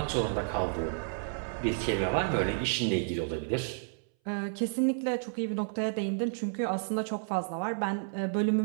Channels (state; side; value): silent; left; 57 dB below the other